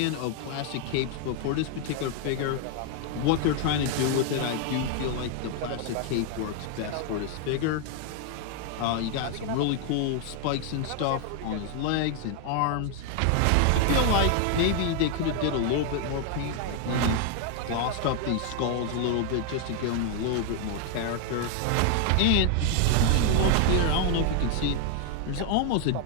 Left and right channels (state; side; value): different; both; correlation 0.00